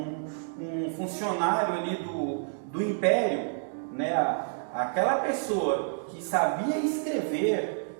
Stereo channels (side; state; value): left; silent; digital silence